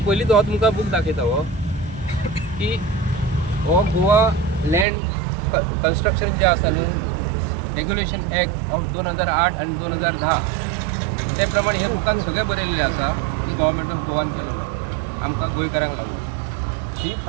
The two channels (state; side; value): drops out; left; at 4.9 s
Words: पयलींच हो तुमकां बूक दाखयता हो की हो गोवा लँड कन्स्ट्रक्शन जे आसा न्हू रेग्युलेशन एक्ट ऑफ 2008 आनी 2010 ते प्रमाणे हे बुकान सगळें बरयल्लें आसा। हे गव्हर्मेंट ऑफ गोवान केलेलो आमकां गोंयकारांक लागून। ही